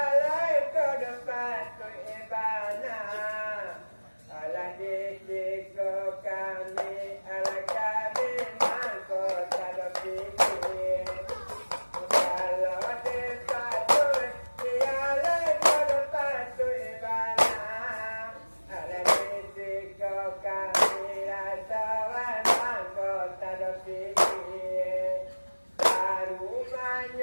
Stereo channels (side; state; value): both; inverted; correlation -1.00